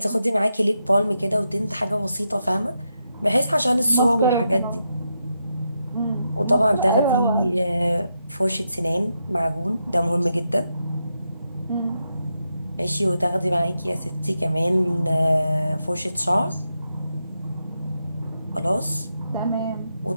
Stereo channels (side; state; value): both; inverted; correlation -0.84